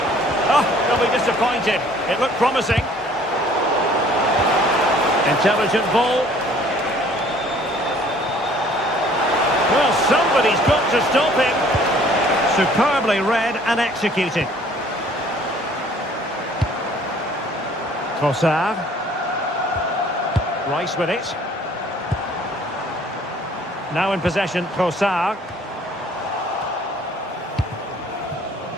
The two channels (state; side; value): normal; both; correlation 0.56